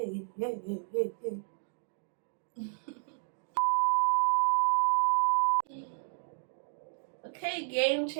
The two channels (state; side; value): silent; left; digital silence